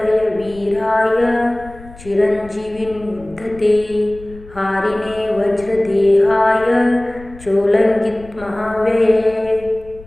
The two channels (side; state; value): left; noise; rumble, 20 dB below the sound